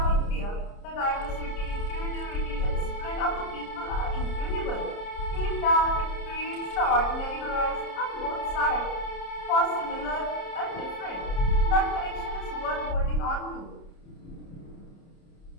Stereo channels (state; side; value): late; right; 30 ms